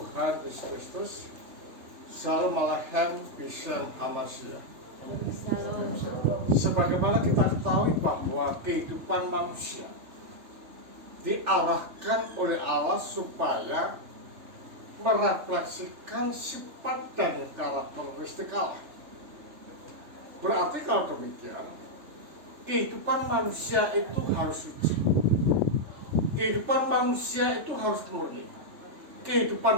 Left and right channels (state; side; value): late; left; 3.3 ms